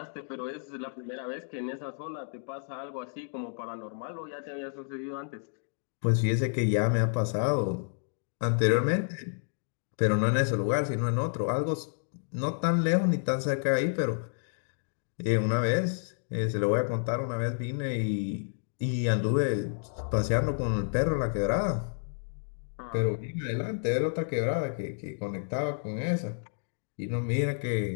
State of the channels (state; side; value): silent; right; digital silence